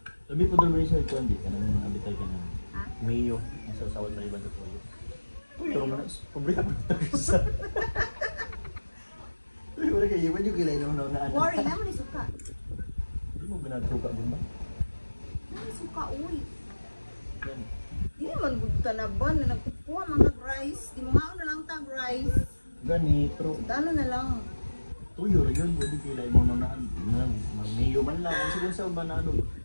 Labi po doon rin sa ito, hindi ka naman abitay ka na. Ha? Mayo, nasa sawad na iba sa tuyo. Pero manas, pumbrika mo ito sa... Uy, wala kayo, iwan yung kilay naman na ano. Worry naman yung suka. Hindi mo ginagsuka din ba? Naman suka, uy. Yan. Di naman gudta na ba na nagkukuha mga rice. Di mo nga na lang tag rice. Gani, pero Ano na lang. tuyo rin yun, pwede kilay mo na mayo man lang. Ang sigun sa ba na ano?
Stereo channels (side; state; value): both; inverted; correlation -1.00